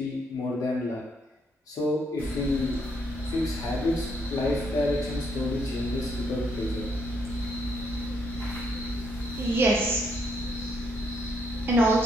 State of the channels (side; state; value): both; normal; correlation 0.73